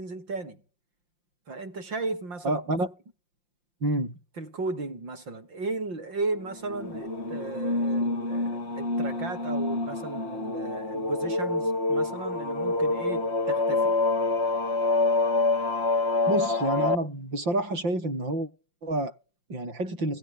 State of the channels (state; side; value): late; left; 5.7 ms